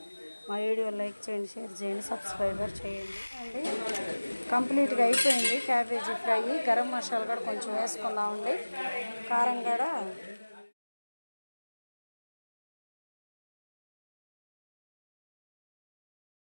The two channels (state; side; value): inverted; both; correlation -1.00